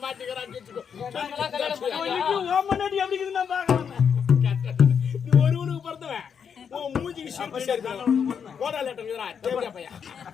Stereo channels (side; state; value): right; quieter; 7.1 dB